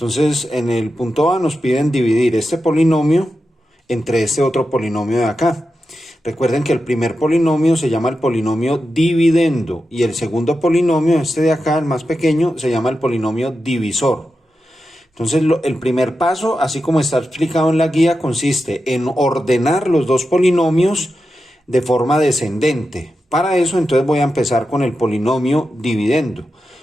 en el punto A nos piden dividir este polinomio entre este otro polinomio de acá. Recuerden que el primer polinomio se llama el polinomio dividendo y el segundo polinomio, este de acá, el más pequeño, se llama el polinomio divisor. Entonces, el primer paso, así como está explicado en la guía, consiste en ordenar los dos polinomios de forma descendente. Para eso, entonces voy a empezar con el polinomio dividendo.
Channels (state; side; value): normal; both; correlation 0.90